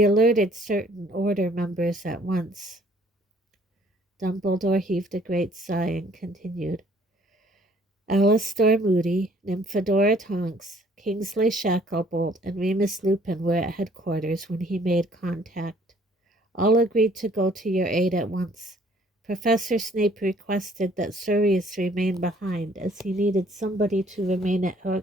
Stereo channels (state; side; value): normal; both; correlation 0.60